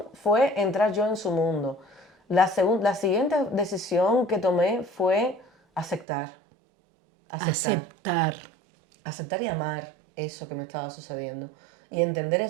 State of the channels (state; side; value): drops out; left; at 6.1 s